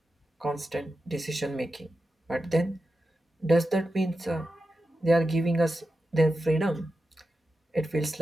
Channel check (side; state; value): both; normal; correlation 0.91